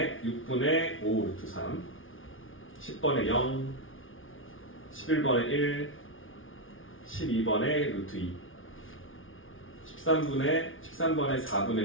6분의 5 루트 3, 10번에 0, 11번에 1, 12번에 루트 2, 13번에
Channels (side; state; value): right; late; 0.58 ms